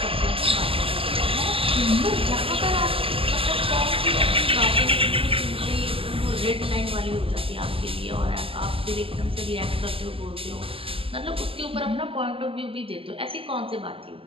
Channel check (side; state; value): left; late; 0.26 ms